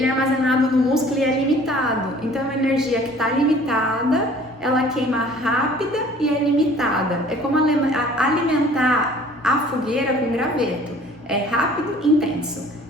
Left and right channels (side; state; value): both; normal; correlation 0.51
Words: é armazenado no músculo e é limitado. Então, a energia que está limitada, ela queima rápida e é limitada. É como alimentar a fogueira com graveto. É rápido e intenso.